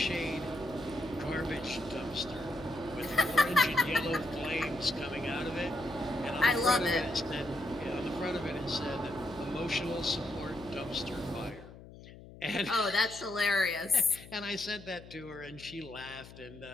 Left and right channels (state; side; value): noise; left; hum, 17 dB below the sound